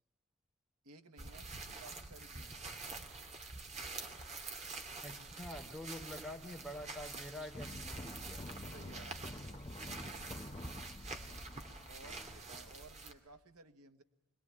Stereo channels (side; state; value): both; normal; correlation 0.50